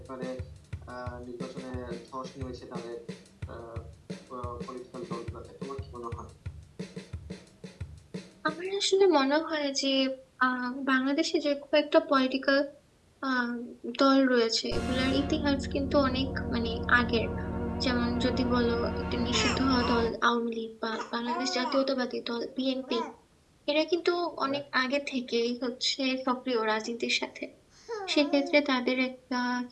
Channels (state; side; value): identical; both; correlation 1.00